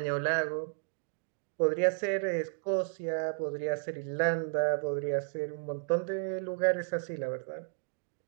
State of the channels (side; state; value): left; silent; digital silence